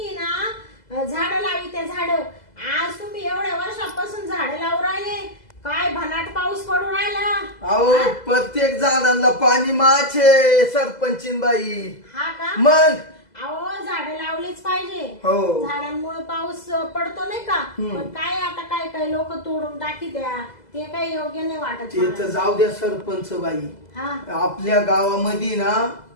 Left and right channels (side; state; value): right; late; 2.0 ms